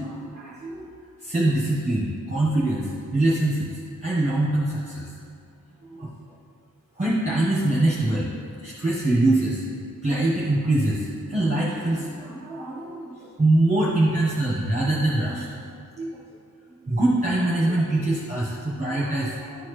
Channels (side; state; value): both; normal; correlation 0.84